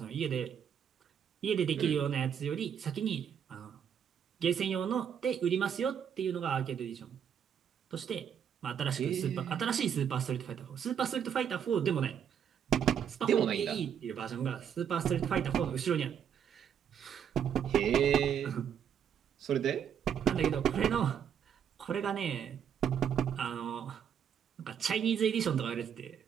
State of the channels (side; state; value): left; quieter; 8.3 dB